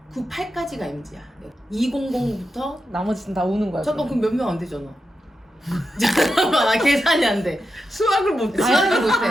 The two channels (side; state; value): both; normal; correlation 0.88